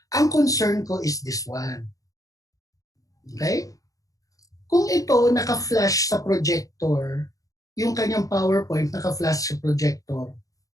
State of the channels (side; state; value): right; late; 0.17 ms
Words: Ang concern ko is this one. Okay? Kung ito naka-flash sa projector, yung kanyang PowerPoint naka-flash sa projector,